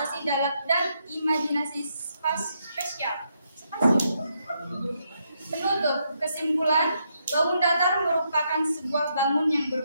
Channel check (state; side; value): inverted; both; correlation -0.78